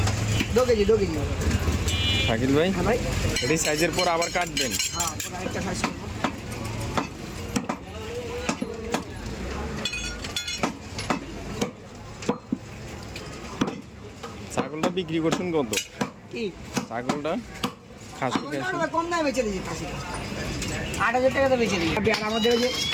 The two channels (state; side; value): identical; both; correlation 1.00